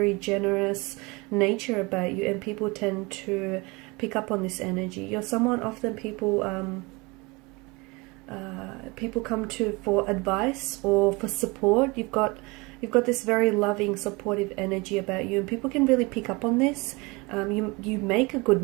generous nature about you, and people tend to pick up on this energy. You're someone often people come to for advice or for support. You've got this very loving, supportive energy about you, and people can really pick up on this. You make a good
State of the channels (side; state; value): left; quieter; 25.9 dB